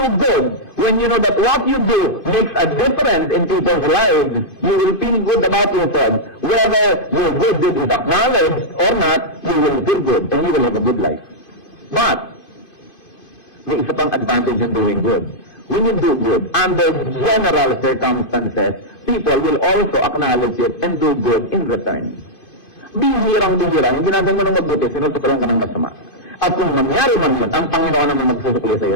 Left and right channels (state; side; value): late; right; 2.5 ms